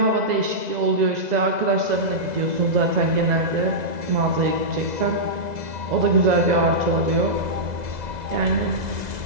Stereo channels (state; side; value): late; left; 2.0 ms